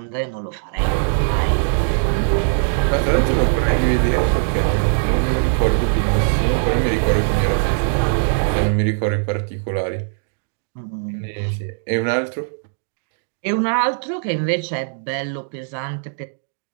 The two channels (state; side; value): silent; left; digital silence